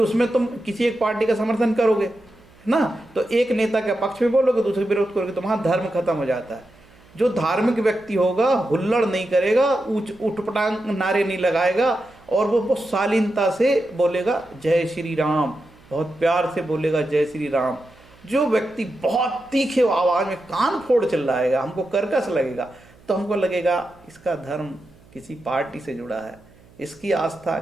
तुम किसी एक पार्टी का समर्थन करोगे ना, तो एक नेता के पक्ष में बोलोगे, दूसरे विरोध करोगे, तो वहाँ धर्म खत्म हो जाता है। जो धार्मिक व्यक्ति होगा हुल्लड़ नहीं करेगा, उठपटांग नारे नहीं लगाएगा और वो बहुत शालीनता से बोलेगा जय श्री राम, बहुत प्यार से बोलेगा जय श्री राम। जो व्यक्ति बहुत तीखे आवाज़ में कान फोड़ चिल्लाएगा, हमको कर्कश लगेगा, तो हमको लगेगा इसका धर्म किसी पार्टी से जुड़ा है, इसकी आस्था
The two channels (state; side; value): noise; right; hum, 27 dB below the sound